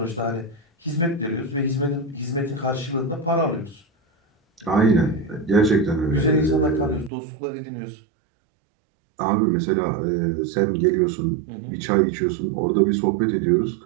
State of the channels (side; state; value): left; drops out; at 7.1 s